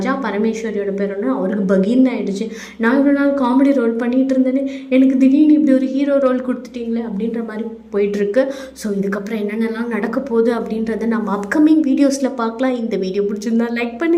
பரமேஸ்வரியோட பேரன்னு அவருக்கு பகீர்னு ஆகிடுச்சு, நான் இவ்வளோ நாள் காமெடி ரோல் பண்ணிகிட்டு இருந்தேன்னு எனக்கு திடீர்னு இப்படி ஒரு ஹீரோ ரோல் கொடுத்துட்டீங்களே அப்படின்ற மாதிரி போயிட்டுருக்கு. ஸோ இதுக்கப்புறம் என்னென்னலாம் நடக்க போகுது அப்படின்றத நம்ம அப்கமிங் வீடியோஸில் பார்க்கலாம். இந்த வீடியோ பிடிச்சிருந்தா லைக்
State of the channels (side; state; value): both; identical; correlation 1.00